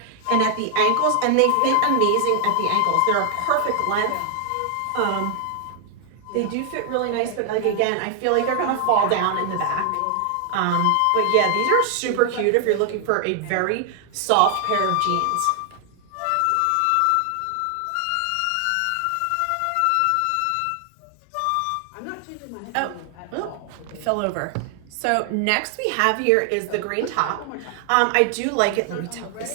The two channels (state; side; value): different; both; correlation 0.00